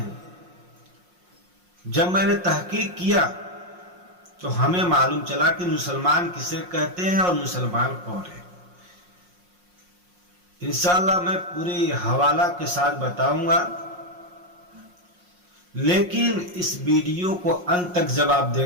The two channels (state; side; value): late; left; 5.6 ms